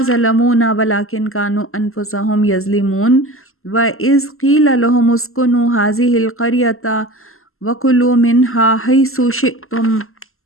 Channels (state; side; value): late; right; 0.62 ms